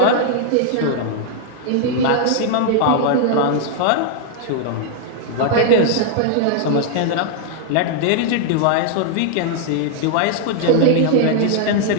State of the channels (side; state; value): both; different; correlation 0.00